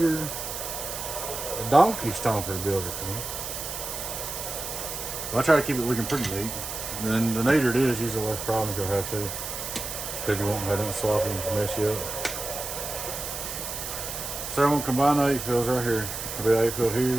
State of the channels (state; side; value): noise; right; hiss, 6 dB below the sound